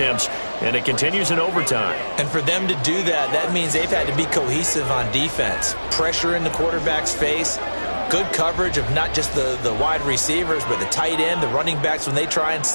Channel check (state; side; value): inverted; both; correlation -1.00